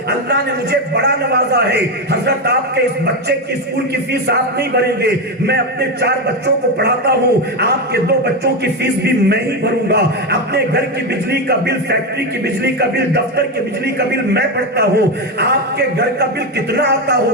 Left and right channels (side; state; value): both; normal; correlation 0.12